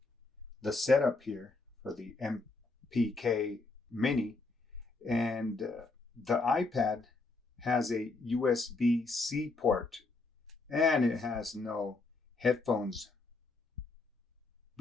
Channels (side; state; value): right; quieter; 3.5 dB